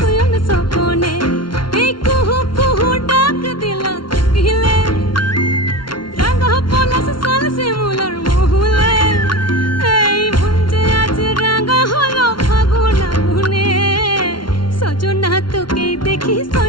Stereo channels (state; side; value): late; right; 0.72 ms